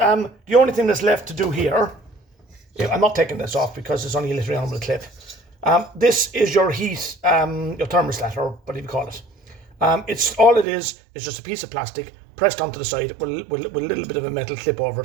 only thing that's left to do here, I'm not taking this off because it's only literally on with a clip. This is your heat, your thermostat, or whatever you call it. It's all it is just a piece of plastic pressed onto the side with a little bit of a metal clip over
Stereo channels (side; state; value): left; drops out; at 10.7 s